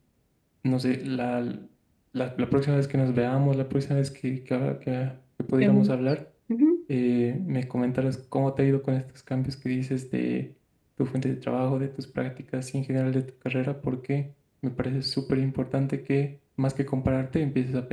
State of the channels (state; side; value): identical; both; correlation 1.00